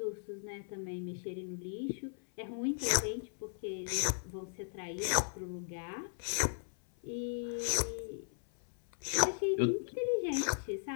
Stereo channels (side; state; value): right; silent; 53 dB below the other